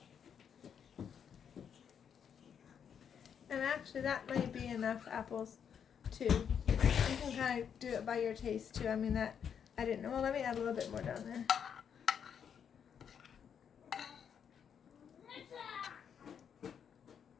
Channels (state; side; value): quieter; right; 7.8 dB